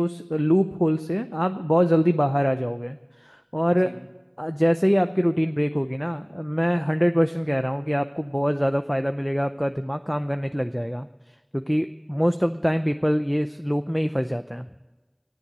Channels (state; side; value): identical; both; correlation 1.00